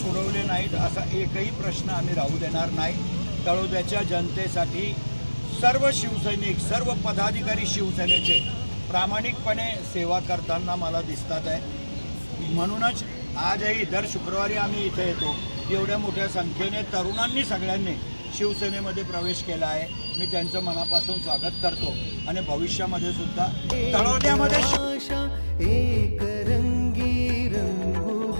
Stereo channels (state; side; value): inverted; both; correlation -1.00